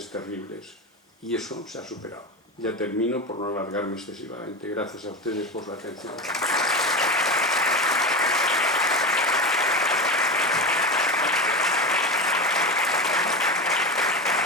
terribles. Y eso se ha superado. Ya termino por no alargarme excesivamente. Gracias a ustedes por la atención.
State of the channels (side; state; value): both; normal; correlation 0.22